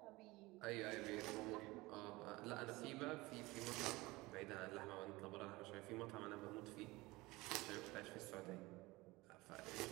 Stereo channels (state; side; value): quieter; left; 21.3 dB